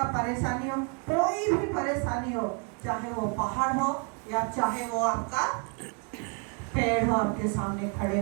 परेशानी हो, कोई भी परेशानी हो, चाहे वो पहाड़ हो या चाहे वो आपका पेड़ हो आपके सामने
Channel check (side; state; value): left; quieter; 37.2 dB